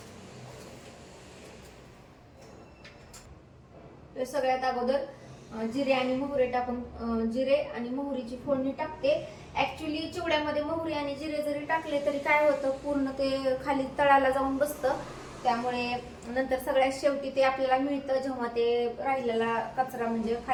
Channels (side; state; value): both; identical; correlation 1.00